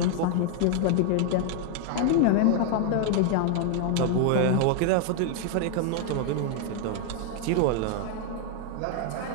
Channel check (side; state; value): both; different; correlation 0.00